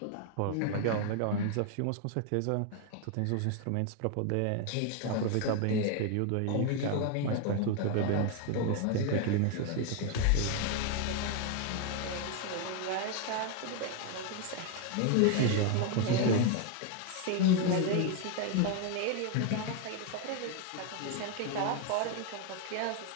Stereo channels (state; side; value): different; both; correlation 0.01